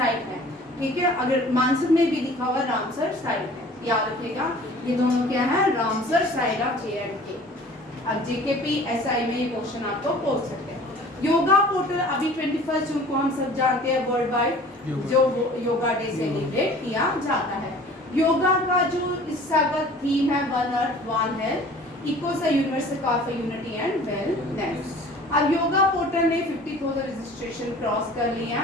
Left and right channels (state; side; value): normal; both; correlation 0.47